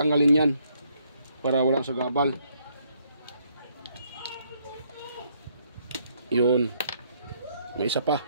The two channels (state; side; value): inverted; both; correlation -0.70